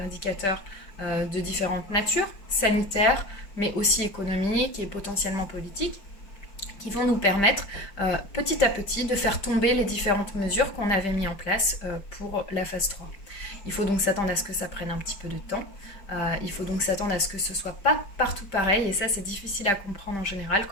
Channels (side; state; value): right; late; 5.1 ms